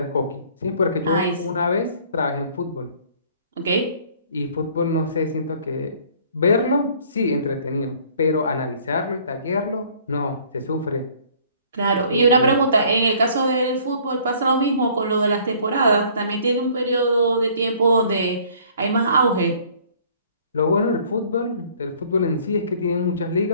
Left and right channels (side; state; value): both; inverted; correlation -0.56